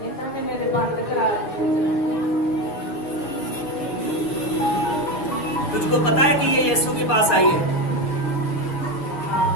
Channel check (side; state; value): right; late; 6.4 ms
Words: इन्होंने मेरे बंद करा। तुझको पता है कि ये यीशु के पास आई है?